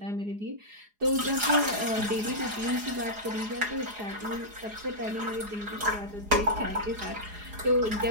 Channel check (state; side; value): late; left; 4.8 ms